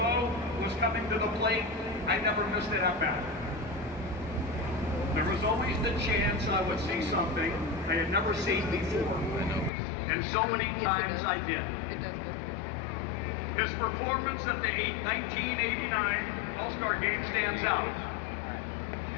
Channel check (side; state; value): right; drops out; at 9.7 s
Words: was coming to the plate, I never missed it at bat. There was always the chance I would see something I had never seen before. And so many times I did. His performance at the 1989 All-Star Game stands out,